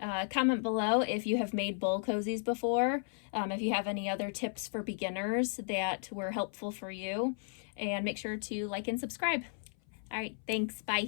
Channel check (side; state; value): right; silent; 55 dB below the other